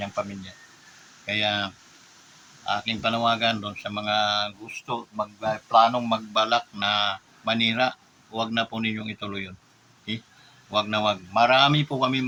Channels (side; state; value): both; identical; correlation 1.00